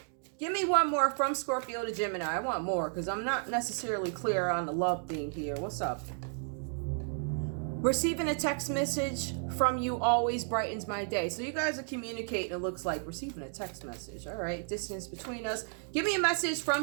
Give me one more from Scorpio to Gemini. I want more because I'm not necessarily clear on the love thing here. What's up? Receiving a text message from you always brightens my day. So you guys are communicating, it looks like. Receiving a text message. All right. Distance between us. Give me a message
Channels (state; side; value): silent; left; 56 dB below the other